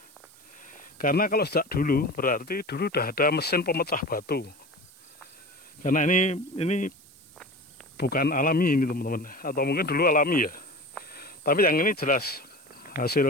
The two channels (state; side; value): noise; right; hiss, 26 dB below the sound